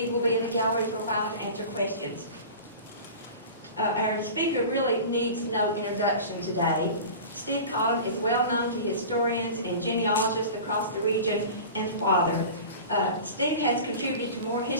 will be in the gallery for a while to answer questions. Our speaker really needs no introduction today. Steve Cotham is well known to historians and genealogists across the region and father. Steve has contributed to more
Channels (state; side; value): inverted; both; correlation -0.35